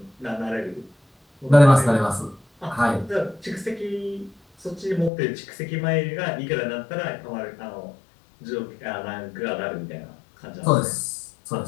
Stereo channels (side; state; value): right; drops out; at 5.1 s